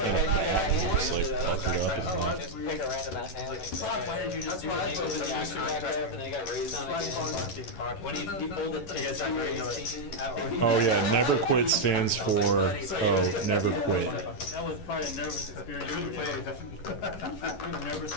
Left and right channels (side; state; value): right; late; 11 ms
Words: a just like fucked it up. Just pick a random ass hand. Why did you just do it? He opened the action back up and then he got raised on again. When he folded to his Oh yeah, never quit stands for never quit. That was probably a nervous experience. We were nervous the